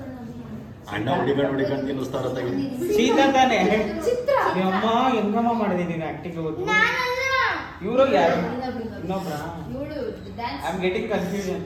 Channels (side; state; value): both; identical; correlation 1.00